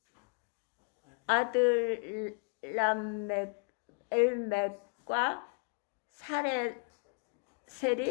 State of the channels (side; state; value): right; quieter; 39.1 dB